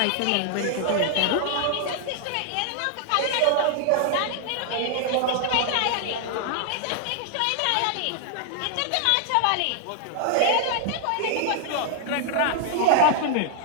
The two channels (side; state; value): both; different; correlation 0.00